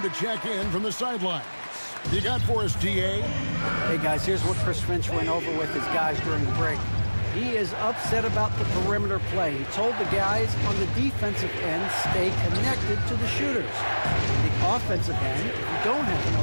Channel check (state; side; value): inverted; both; correlation -1.00